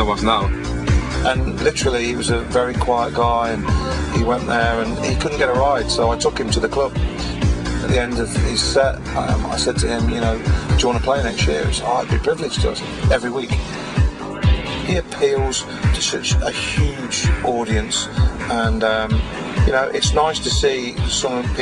was now. And literally, he was a very quiet guy, and he went there and he couldn't get a ride, so I took him to the club. At the end of his set, I said to him, do you want to play next year? He said, I'd be privileged to. Every week. He appeals to such a huge audience, and it's nice to see some of the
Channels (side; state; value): both; identical; correlation 1.00